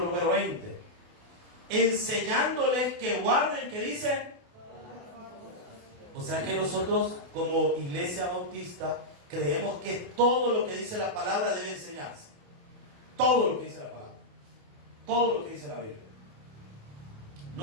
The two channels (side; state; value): left; late; 28 ms